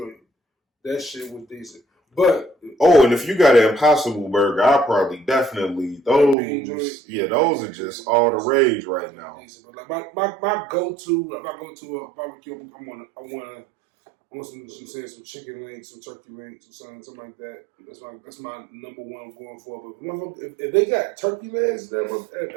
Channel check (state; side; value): drops out; left; at 6.4 s